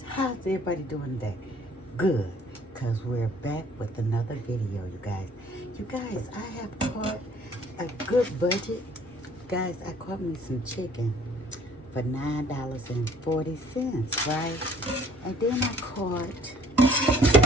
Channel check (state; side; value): normal; both; correlation 0.56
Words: how's everybody doing today? Good, because we're back with another video, you guys. You guys, I have caught a good budget. Guys, I caught me some chicken for $9.40, right? And then I caught